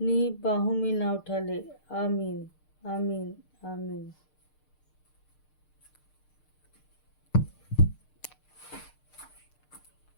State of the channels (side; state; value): right; late; 6.6 ms